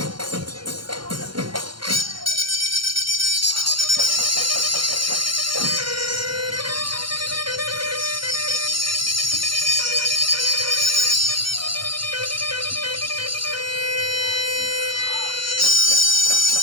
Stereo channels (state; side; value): late; left; 0.73 ms